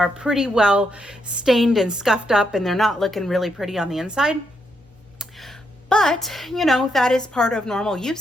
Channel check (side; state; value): both; normal; correlation 0.79